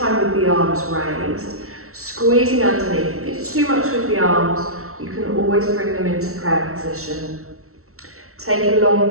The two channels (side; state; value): left; late; 0.63 ms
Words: with the arms raised. Squeezing underneath. If it's too much with the arms, you can always bring them into prayer position. Take a long